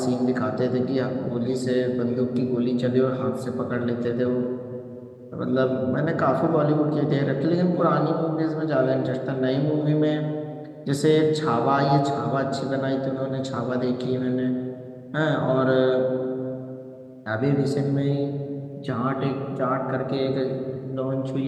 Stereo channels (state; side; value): identical; both; correlation 1.00